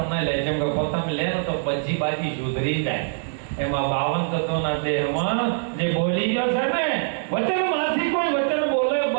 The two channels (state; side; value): silent; left; 63 dB below the other